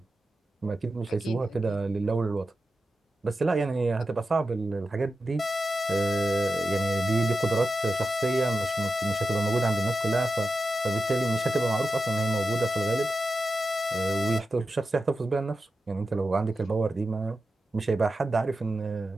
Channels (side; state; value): both; normal; correlation 0.91